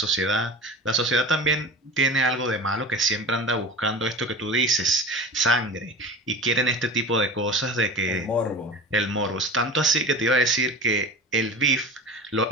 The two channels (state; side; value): normal; both; correlation 0.34